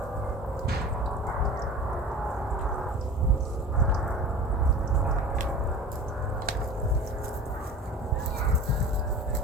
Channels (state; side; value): normal; both; correlation 0.37